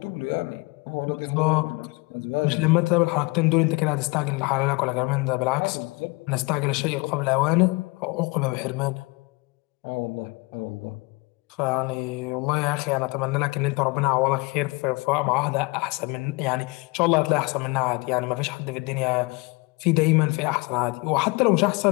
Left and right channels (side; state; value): right; quieter; 26.3 dB